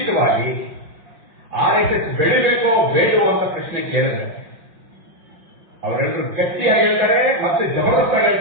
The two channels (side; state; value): left; late; 5.6 ms